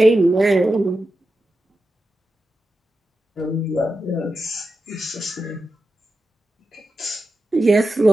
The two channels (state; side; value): normal; both; correlation 0.90